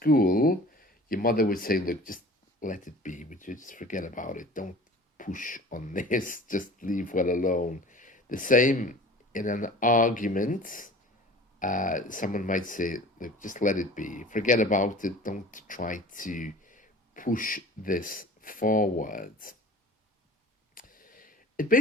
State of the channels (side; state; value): both; normal; correlation 0.42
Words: Your mother would say, look, just let it be. Would you just forget about it? Don't push on this. Just leave well alone. The same in an argument. Someone might say, look, just let it be. Forget about it. Don't try to push this forward. It